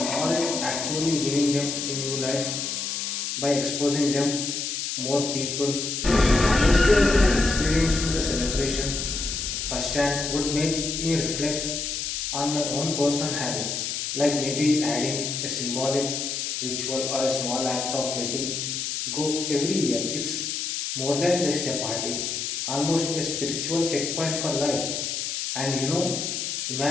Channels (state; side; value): noise; left; hiss, 3 dB below the sound